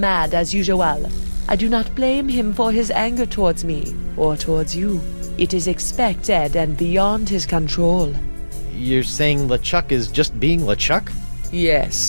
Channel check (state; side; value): inverted; both; correlation -1.00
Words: as usual. I do not blame him for his anger towards me, or towards you. It is expected and beyond his control. You're saying LeChuck is just being LeChuck?